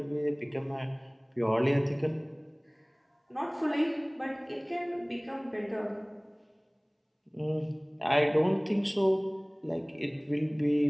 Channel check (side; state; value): both; identical; correlation 1.00